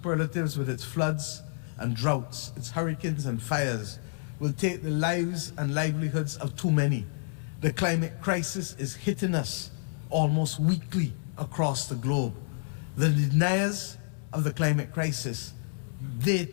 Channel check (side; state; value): right; silent; digital silence